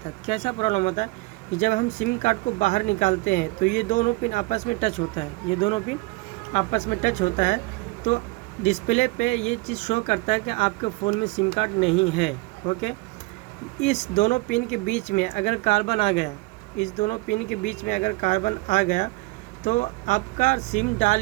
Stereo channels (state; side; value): quieter; left; 23.5 dB